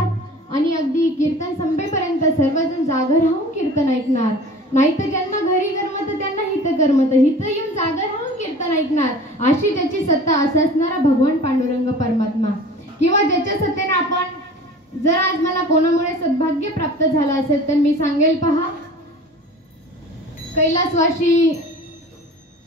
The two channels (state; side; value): normal; both; correlation 0.42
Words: आणि अगदी कीर्तन संपेपर्यंत सर्वजण जागर राहून कीर्तन ऐकणार, नाहीतर ज्यांना घरी करमत त्यांना हित करमत, हित येऊन जागर राहून कीर्तन ऐकणार, अशी ज्याची सत्ता असा असणारा भगवान पांडुरंग परमात्मा, किंवा ज्याच्या सत्तेने आपण जर आज मला कोणामुळे सद्भाग्य प्राप्त झालं असेल तर मी सांगेल, पहा,